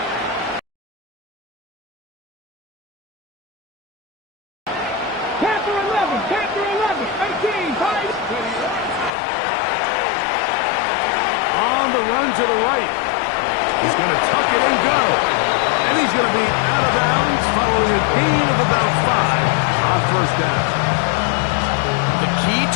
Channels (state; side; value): drops out; right; at 9.1 s